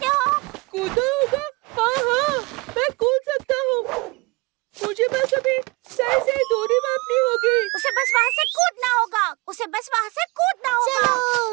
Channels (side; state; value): left; quieter; 25.8 dB